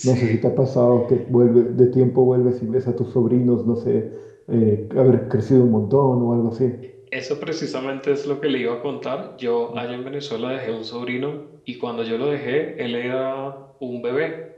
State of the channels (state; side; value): identical; both; correlation 1.00